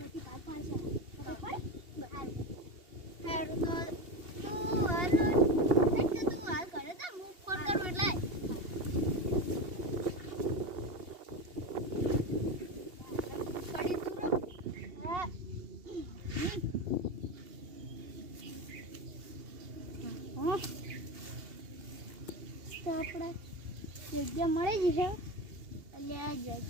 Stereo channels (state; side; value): late; left; 2.8 ms